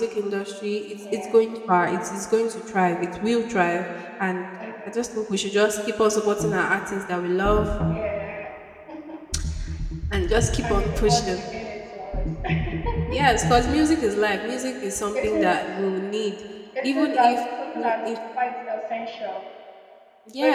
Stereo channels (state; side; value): identical; both; correlation 1.00